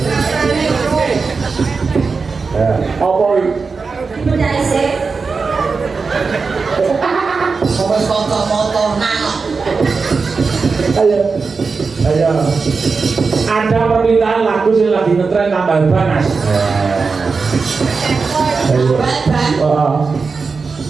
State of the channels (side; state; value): left; quieter; 4.7 dB